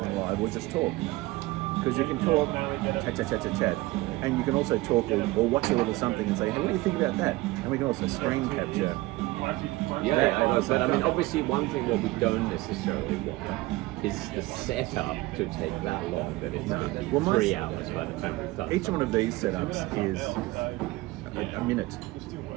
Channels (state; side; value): quieter; left; 19.9 dB